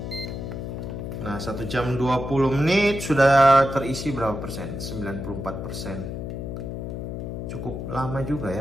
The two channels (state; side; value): noise; left; hum, 6 dB below the sound